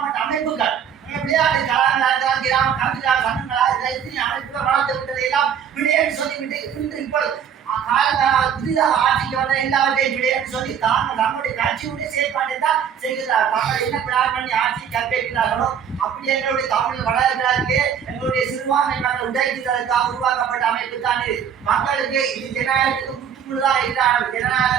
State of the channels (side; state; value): left; quieter; 8.1 dB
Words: அமைப்புகள் விளையாட்டு கலாச்சார கிராம கல்வியாளர் சங்கங்களா எத்தனை அமைப்புகள் வளர்த்து விட்டதை எல்லாம் விளையாட்டு சொல்லிவிட்டு இன்று இப்பொழுது புதிதாக ஆட்சிக்கு வந்த எல்லாவற்றையும் விளையாட்டு சொல்லி தாங்கள் நம்முடைய கட்சியுடைய செயற்பாட்டை தான் செய்கிறார். தாங்கள் என்ன பிளான் பண்ணி ஆட்சி கற்பிக்கிறார்களோ அப்படி எங்களுடைய தமிழ் வளர்கிறார்களே எங்களுடைய சிறுபான்மை மக்கள் உடைக்கிறதுக்காக உருவாக்கப்பட்ட அமைப்பு தான் இது. மக்களுக்கு இது ஜனநாயகத்துக்கு முற்றுமுழுதாக இருக்கிறார்கள்.